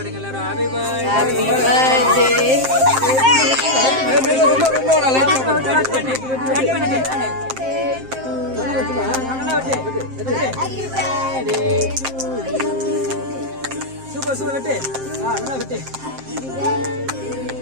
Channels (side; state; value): left; late; 7.6 ms